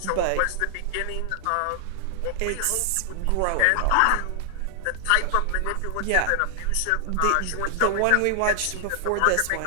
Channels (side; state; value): both; different; correlation 0.00